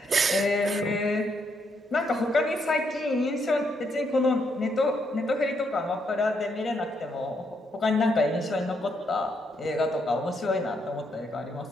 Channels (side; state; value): both; normal; correlation 0.76